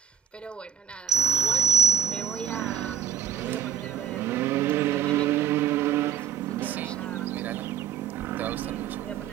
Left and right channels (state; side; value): quieter; left; 8.4 dB